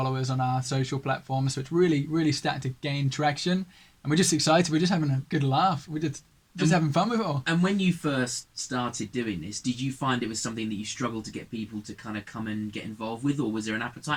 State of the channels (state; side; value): identical; both; correlation 1.00